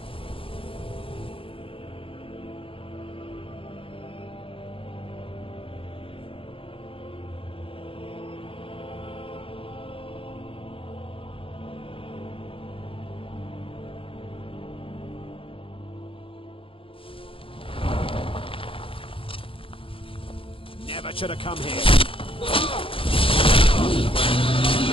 Never should have come here.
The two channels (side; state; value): right; late; 0.26 ms